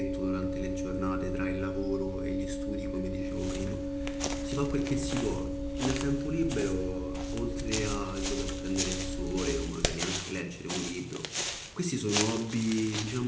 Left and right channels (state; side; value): identical; both; correlation 1.00